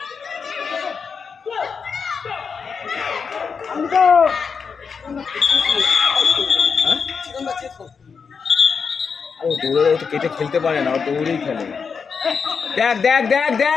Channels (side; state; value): right; quieter; 5.8 dB